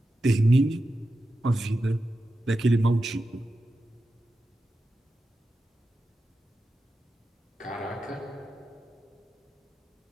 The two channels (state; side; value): normal; both; correlation 0.91